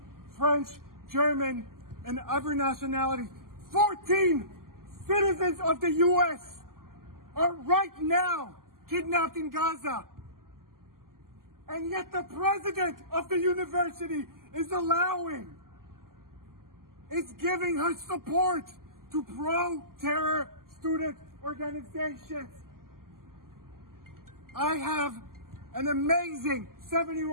French, German, and other nationalities. 14 citizens of the U.S. are right now kidnapped in Gaza. And yet the president of the university is giving her support to pro-terror student organizations. I have an amazing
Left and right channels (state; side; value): late; left; 0.92 ms